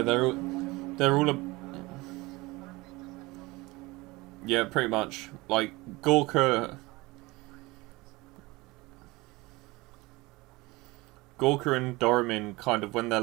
they're all yeah, pretty much. Like Gorka and Doromin, kind of when they're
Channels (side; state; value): left; quieter; 22.1 dB